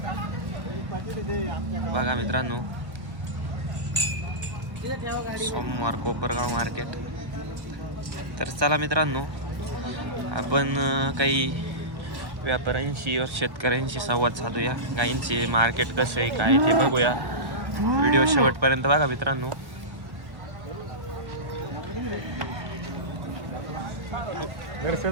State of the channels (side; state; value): left; late; 1.1 ms